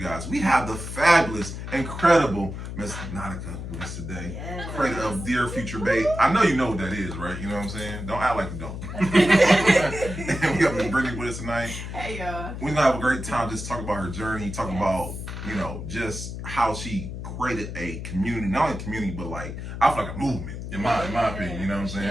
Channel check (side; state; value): left; noise; hum, 7 dB below the sound